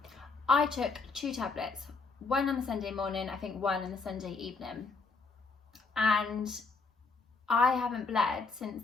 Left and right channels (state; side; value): quieter; right; 4.4 dB